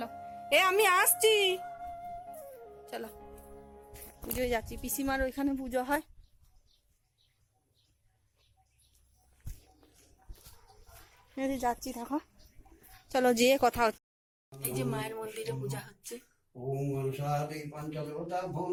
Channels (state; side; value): identical; both; correlation 1.00